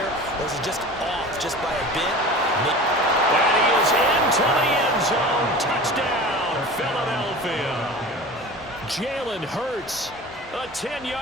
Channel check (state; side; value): normal; both; correlation 0.37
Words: or is he just off just by a bit? And he is into the end zone. Touchdown, Philadelphia. Jalen Hurts, a